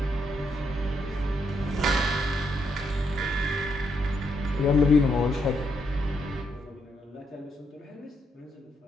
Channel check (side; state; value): both; normal; correlation 0.78